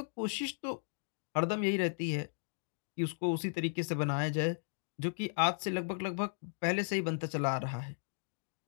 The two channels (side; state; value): right; silent; digital silence